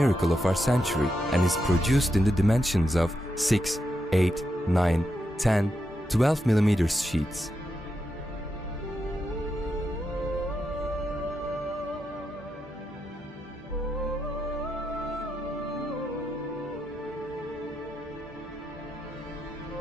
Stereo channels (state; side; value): normal; both; correlation 0.84